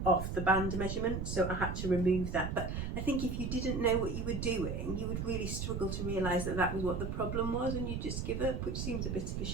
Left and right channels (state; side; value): noise; right; rumble, 3 dB below the sound